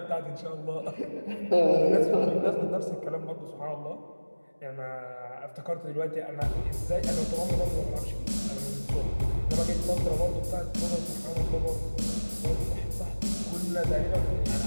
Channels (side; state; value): both; inverted; correlation -1.00